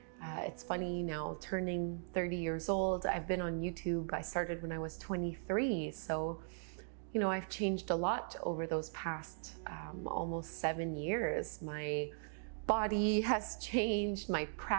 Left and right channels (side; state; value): left; silent; digital silence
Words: It's funny now, turning 30 years old. I've been on YouTube. I started when I was 23, so you know, I've changed a lot over those past almost 7 years. My body has changed, my